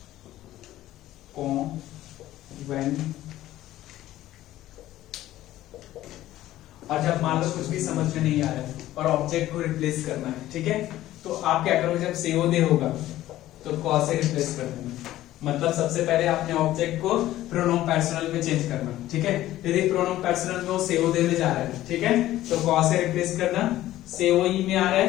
कौन when, और जब मान लो कुछ भी समझ में नहीं आ रहा है और ऑब्जेक्ट को रिप्लेस करना है, ठीक है? तो आप क्या करोगे, जब सेओदे होगा तो कॉ से रिप्लेस कर देना। मतलब सबसे पहले आपने ऑब्जेक्ट को प्रोनोम पर्सनल में चेंज करना, ठीक है? यदि प्रोनोम पर्सनल में वो सेओदे में जा रहा है, ठीक है, तो कॉ से रिप्लेस करना। सेओई में आ रहा है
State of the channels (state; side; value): quieter; right; 14.6 dB